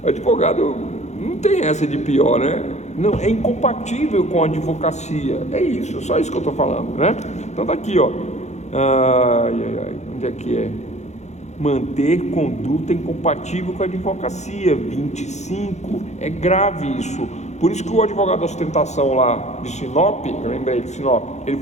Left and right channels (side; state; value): right; late; 0.33 ms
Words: Advogado não tem essa de pior, né? Não, é incompatível com a advocacia. É isso, só isso que eu estou falando, né? Então tá aqui, ó. Onde é que é? Manter conduta incompatível com a advocacia. 25. É grave isso. Por isso que o advogado da ostentação lá de Sinop, eu lembrei de Sinop,